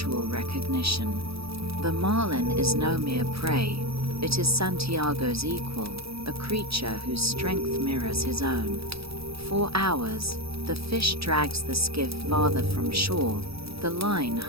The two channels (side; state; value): left; late; 0.77 ms